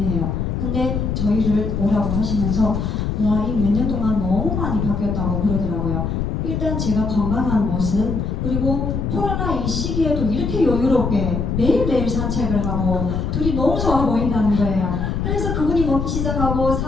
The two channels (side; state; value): left; noise; rumble, 1 dB below the sound